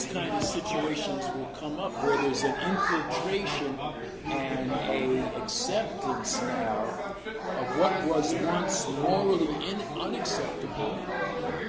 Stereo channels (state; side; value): identical; both; correlation 1.00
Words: kind of situations will come up where there's an infiltration and a acceptance now of what was once morally unacceptable